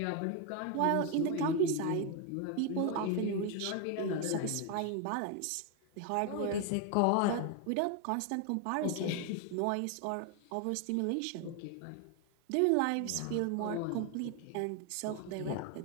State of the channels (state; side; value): different; both; correlation 0.01